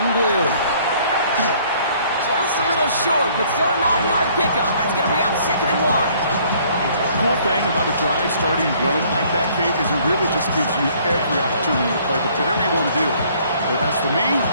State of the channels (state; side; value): inverted; both; correlation -0.60